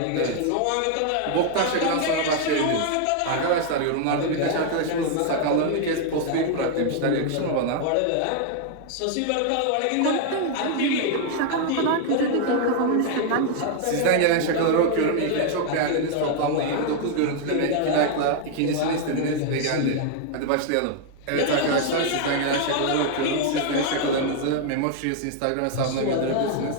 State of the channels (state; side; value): different; both; correlation 0.00